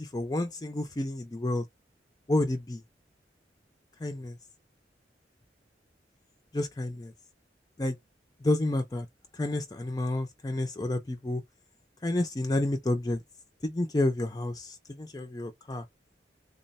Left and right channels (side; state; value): both; normal; correlation 0.87